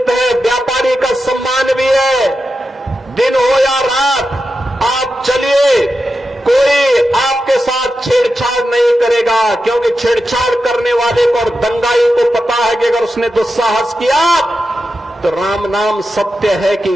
है, व्यापारी का सम्मान भी है। दिन हो या रात, आप चलिए, कोई आपके साथ छेड़छाड़ नहीं करेगा, क्योंकि छेड़छाड़ करने वाले को और दंगाई को पता है कि अगर उसने दुस्साहस किया तो राम नाम सत्य है कि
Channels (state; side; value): normal; both; correlation 0.90